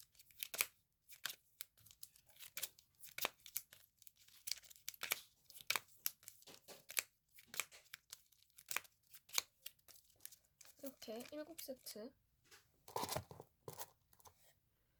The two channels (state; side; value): identical; both; correlation 1.00